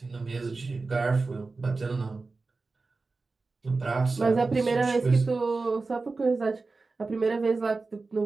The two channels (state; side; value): quieter; left; 3.8 dB